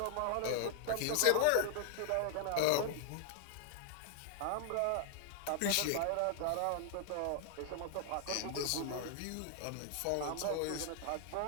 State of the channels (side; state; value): both; different; correlation 0.00